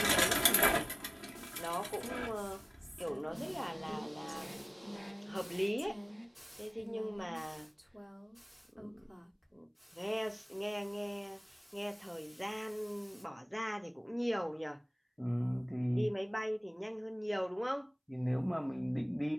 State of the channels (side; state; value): both; identical; correlation 1.00